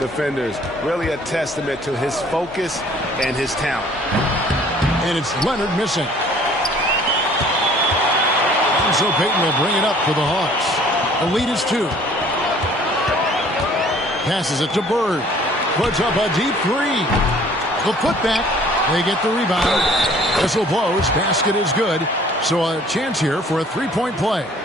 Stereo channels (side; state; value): both; normal; correlation 0.54